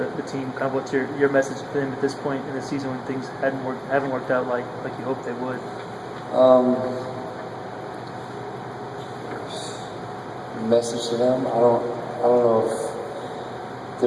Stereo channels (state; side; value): identical; both; correlation 1.00